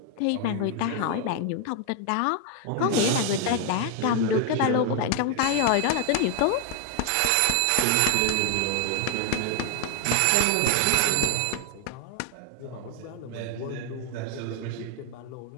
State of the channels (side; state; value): both; different; correlation 0.01